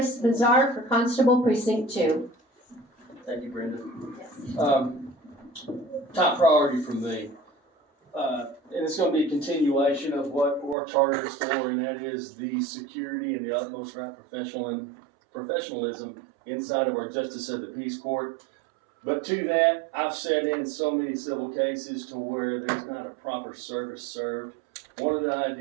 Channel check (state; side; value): drops out; left; at 10.8 s